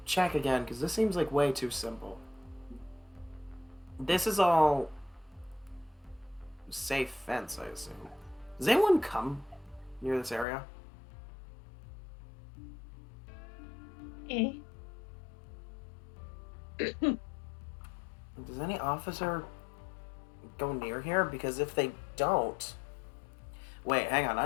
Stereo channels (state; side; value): drops out; right; at 10.5 s